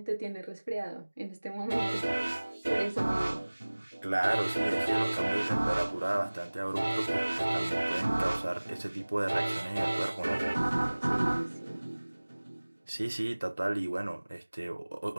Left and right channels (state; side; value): inverted; both; correlation -1.00